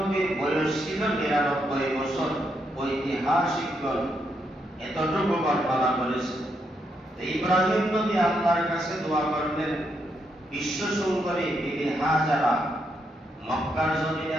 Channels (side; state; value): both; normal; correlation 0.79